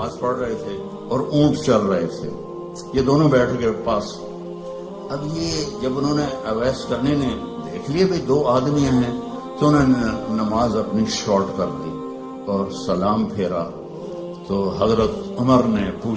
پڑھ رہے تھے اور اونٹ چل رہے تھے. یہ دونوں بیٹھ گئے پاس. اب یہ جب انہوں نے اویس کرنے نے دیکھ لیے بھائی دو آدمی ہیں تو انہوں نے نماز اپنی شارٹ کر دی اور سلام پھیرا. تو حضرت عمر نے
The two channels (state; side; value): identical; both; correlation 1.00